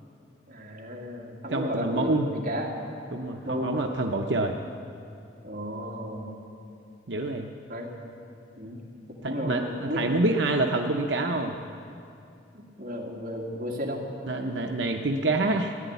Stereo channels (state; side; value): normal; both; correlation 0.27